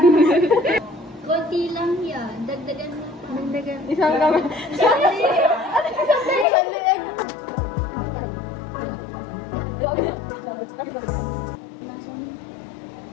Konti lang yan. Dagdagan mo pa. Dagdagan. Isang kami. Isang liig.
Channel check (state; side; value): drops out; right; at 6.5 s